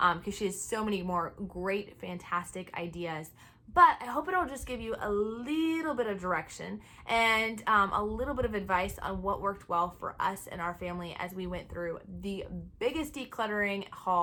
because she has so many more great, fantastic ideas. But I hope it'll just give you a little bit of direction and a little bit of advice on what worked well for us and our family as we went through the biggest decluttering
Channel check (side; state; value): both; identical; correlation 1.00